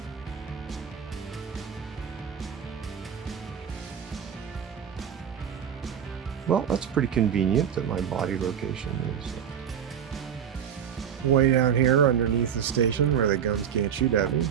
Well, that's pretty convenient that my body location is way down here underneath the station where the guns can't shoot at me.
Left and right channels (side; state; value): left; quieter; 8.4 dB